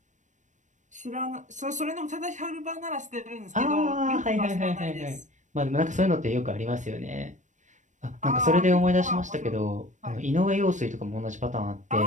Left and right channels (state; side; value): late; left; 0.35 ms